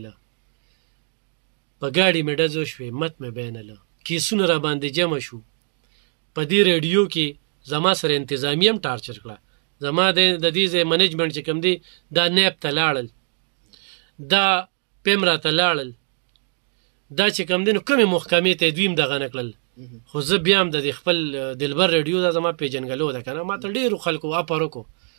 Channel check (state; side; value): silent; left; 56 dB below the other